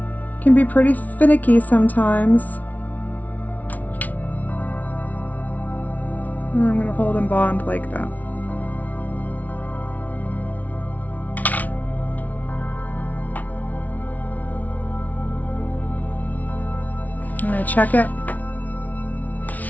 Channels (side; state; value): right; late; 0.075 ms